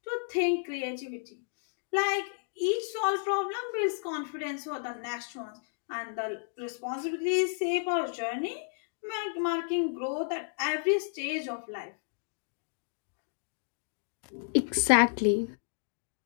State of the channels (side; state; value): right; silent; digital silence